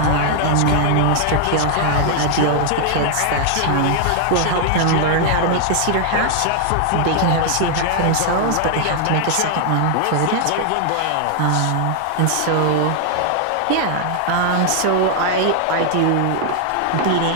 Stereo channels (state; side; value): different; both; correlation 0.00